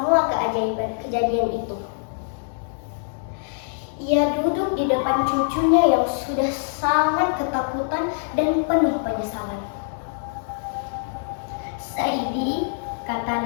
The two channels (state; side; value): silent; right; 61 dB below the other